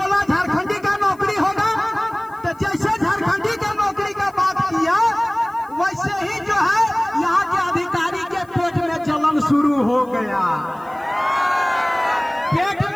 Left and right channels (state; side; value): noise; left; hiss, 29 dB below the sound